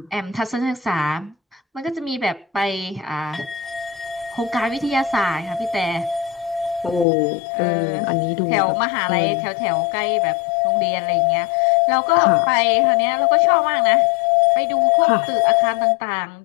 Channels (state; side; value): drops out; right; at 7.1 s